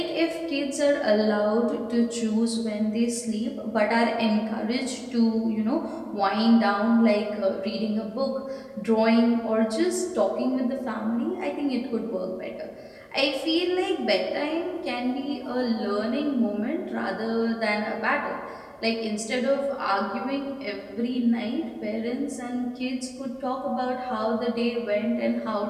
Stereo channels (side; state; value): both; identical; correlation 1.00